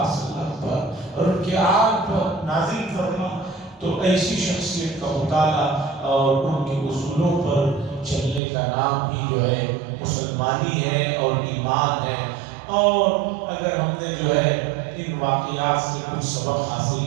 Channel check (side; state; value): left; drops out; at 8.4 s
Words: وسلم پر اور ان کے آل پر نازل فرما۔ تو ایسی شخصیت کا مطالعہ اور ان کے اصولوں پر چلنے کا نام ہی جو ہے مسلمانی ہے اور ایمان ہے۔ اور اگر ہم نے جو ہے ان واقعات سے کچھ سبق حاصل